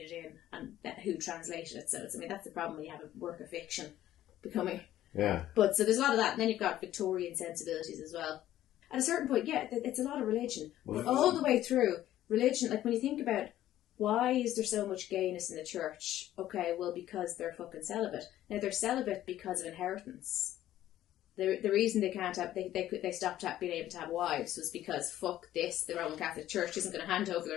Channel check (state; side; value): quieter; right; 13.2 dB